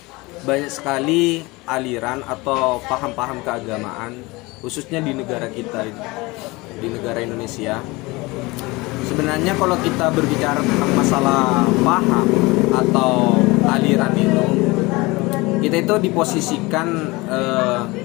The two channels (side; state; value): right; quieter; 23.2 dB